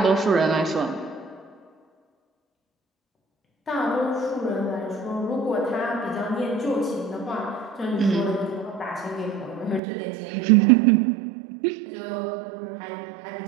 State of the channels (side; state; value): left; drops out; at 9.8 s